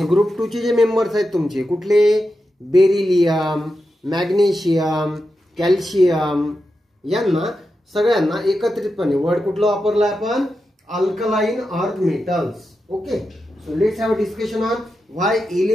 ग्रुप 2 चे जे मेंबर्स आहेत तुमचे कुठले, बेरिलियम, मॅग्नेशियम, कॅल्शियम, यांना सगळ्यांना एकत्रितपणे वर्ड कुठलं वापरलं आपण, alkaline earth metals. Okay, so let's have a discussion on why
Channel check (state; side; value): normal; both; correlation 0.89